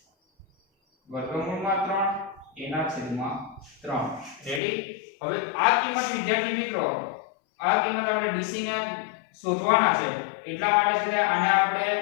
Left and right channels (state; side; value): drops out; right; at 4.6 s